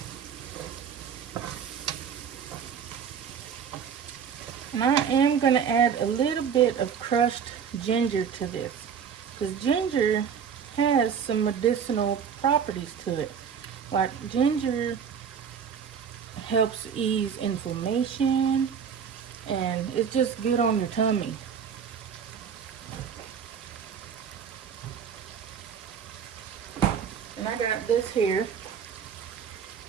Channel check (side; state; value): left; quieter; 7.3 dB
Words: And I am going to add a little bit of crushed ginger to this, because ginger has some medicinal properties to it. Like ginger helps ease inflammation, and it's just good on your tummy. And I got this here,